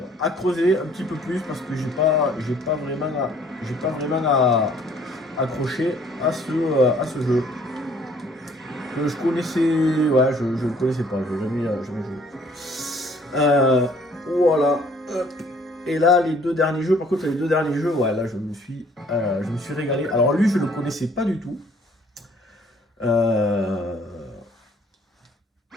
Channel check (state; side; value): normal; both; correlation 0.59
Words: à creuser un petit peu plus parce que j'ai pas vraiment accroché à ce jeu. Que je connaissais... Ouais, je le connaissais pas, je n'ai jamais joué. Voilà. Hop. Et là, les deux derniers jeux, par contre, ouais, là, je me suis régalé. Alors lui, je le connaissais pas du tout.